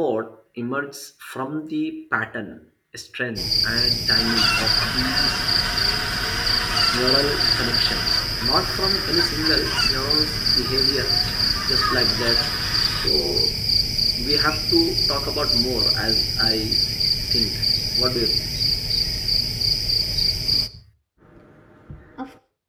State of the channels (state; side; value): identical; both; correlation 1.00